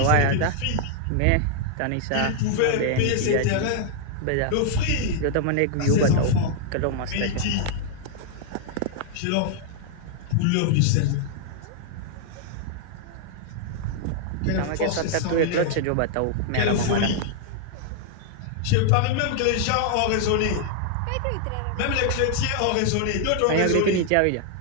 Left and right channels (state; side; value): different; both; correlation 0.00